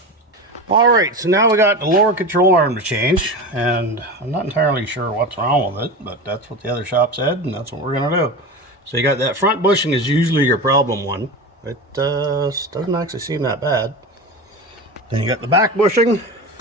Alright, so now we got the lower control arm to change, and I'm not entirely sure what's wrong with it, but that's what the other shop said, and that's what we're going to do. So you got that front bushing is usually your problem one. It doesn't actually seem that bad. Then you got the back bushing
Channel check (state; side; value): normal; both; correlation 0.26